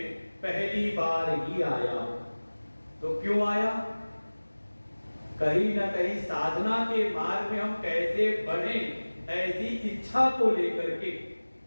पहली बार ही आया। तो क्यों आया? कहीं ना कहीं साधना के मार्ग में हम कैसे बढ़े, ऐसी इच्छा को लेकर के।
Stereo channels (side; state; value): both; inverted; correlation -1.00